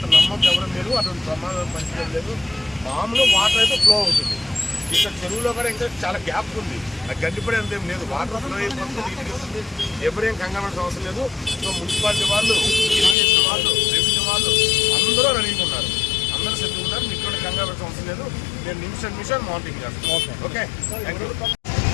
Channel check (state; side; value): drops out; right; at 13.2 s